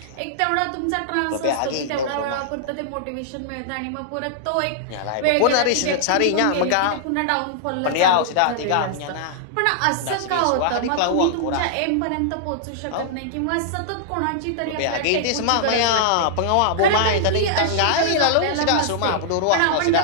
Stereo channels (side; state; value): both; different; correlation -0.01